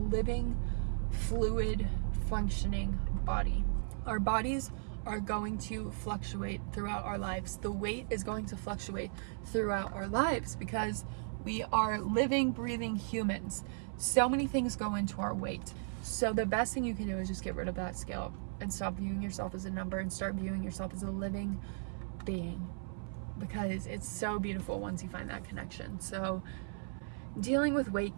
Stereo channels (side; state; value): left; silent; 54 dB below the other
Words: fluid, functioning body. Our bodies are going to fluctuate throughout our lives. The weight is going to fluctuate throughout our lives because we are living, breathing humans. So many things go into our weight. So the best thing you can do is just get rid of that scale and stop viewing yourself as a number and start viewing yourself as a living being, because it's so beautiful once you find that connection. So dealing with weight